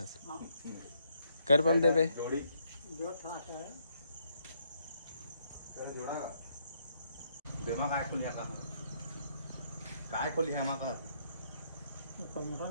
कर पम देबे जो था है बेमा काय खोलिया का काय खोलिया मा का तो मोटर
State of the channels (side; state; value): both; inverted; correlation -0.73